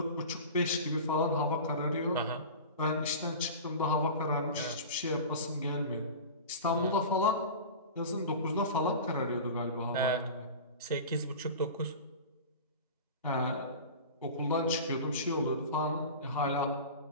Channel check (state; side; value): inverted; both; correlation -0.33